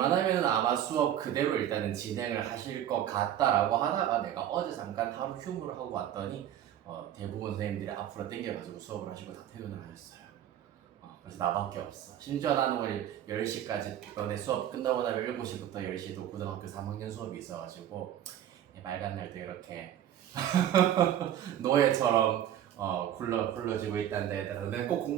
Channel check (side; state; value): left; quieter; 11.1 dB